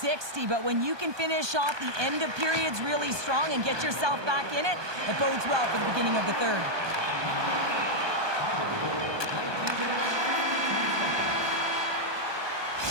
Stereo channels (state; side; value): late; left; 1.2 ms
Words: but when you can finish off the end of periods really strong and get yourself back in it, it bodes well for the beginning of the third.